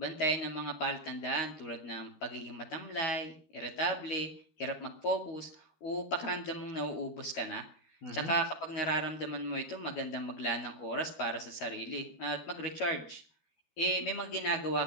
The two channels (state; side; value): late; right; 13 ms